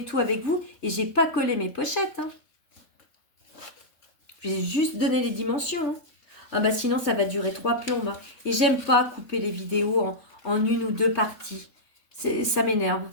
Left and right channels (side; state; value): right; late; 3.3 ms